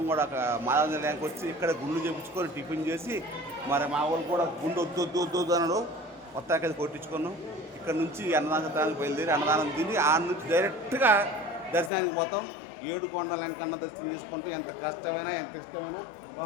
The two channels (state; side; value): drops out; right; at 11.9 s